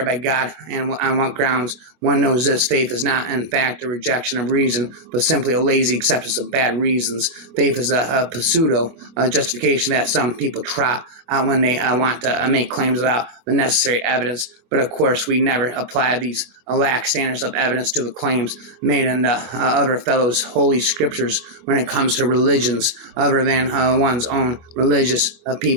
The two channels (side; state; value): left; late; 25 ms